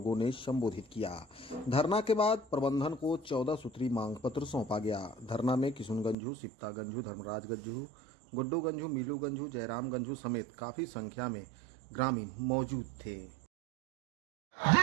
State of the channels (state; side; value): drops out; left; at 6.2 s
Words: ने संबोधित किया। धरना के बाद प्रबंधन को 14 सूत्री मांग पत्र सौंपा गया। धरना में किशुन गंझू, सिप्ता गंझू, धर्मराज गंझू, गुड्डू गंझू, मीलू गंझू, जयराम गंझू समेत काफी संख्या में ग्रामीण मौजूद थे।